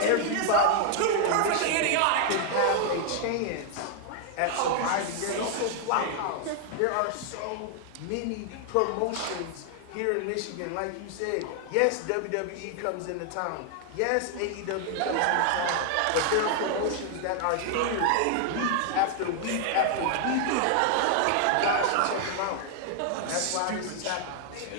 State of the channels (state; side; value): different; both; correlation 0.00